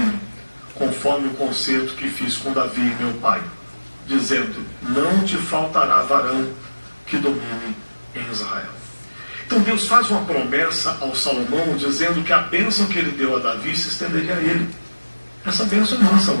conforme o concerto que fiz com Davi meu pai, dizendo, não te faltará varão que domine em Israel. Então Deus faz uma promessa ao Salomão, dizendo que a bênção que ele deu a Davi se estenderia a ele. Essa bênção é nossa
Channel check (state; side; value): inverted; both; correlation -1.00